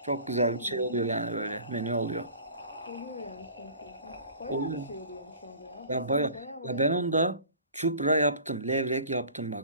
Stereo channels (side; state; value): both; inverted; correlation -0.44